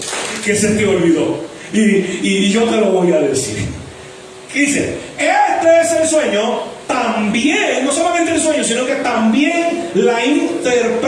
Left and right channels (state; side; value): identical; both; correlation 1.00